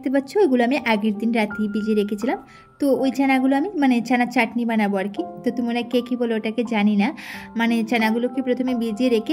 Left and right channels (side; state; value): both; identical; correlation 1.00